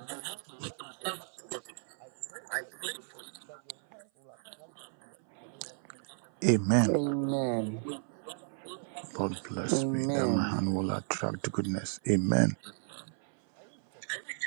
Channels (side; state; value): left; silent; 55 dB below the other